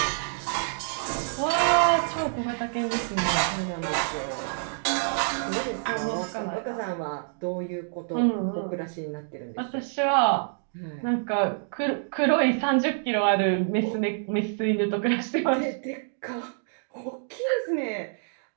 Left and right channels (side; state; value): left; silent; digital silence